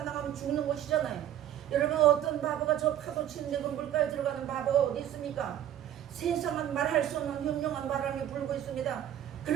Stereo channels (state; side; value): quieter; left; 11.2 dB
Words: 나가면 죽는 것이잖아요. 여러분 어떤 바보가 저 파도 치는데 그 물가에 들어가는 바보가 어디 있습니까? 세상은 말할 수 없는 흉흉한 바람이 불고 있습니다.